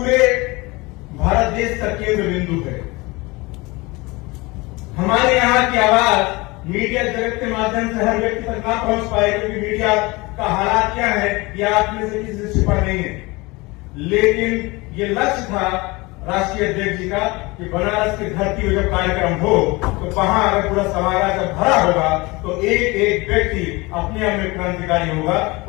भारत देश का केंद्र बिंदु है। हमारे यहाँ की आवाज मीडिया जगत के माध्यम से हर व्यक्ति तक ना पहुंच पाए, क्योंकि मीडिया का हालात क्या है ये आप में से किसी से छिपा नहीं है। लेकिन ये लक्ष्य था राष्ट्रीय अध्यक्ष जी का कि बनारस की धरती में जब कार्यक्रम हो तो वहां अगर पूरा समाज जब भरा होगा तो एक एक व्यक्ति अपने आप में क्रांतिकारी होगा,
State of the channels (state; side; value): quieter; right; 23.8 dB